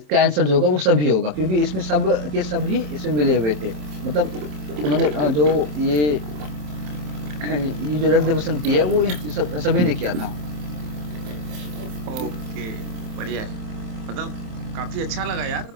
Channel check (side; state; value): left; late; 27 ms